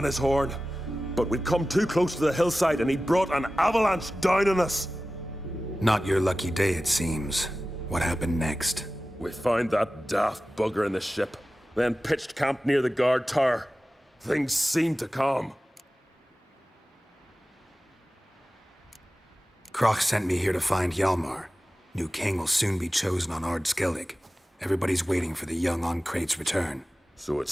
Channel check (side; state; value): both; normal; correlation 0.96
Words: his horn. But we'd come too close to the hillside and he brought an avalanche down on us. Not your lucky day, it seems. What happened next? We found that daft bugger in the ship, then pitched camp near the guard tower. Things seemed to calm. Kroch sent me here to find Hjalmar. New king will soon be chosen on Ard Skellig. Everybody's waiting for the young Ancrate's return. So it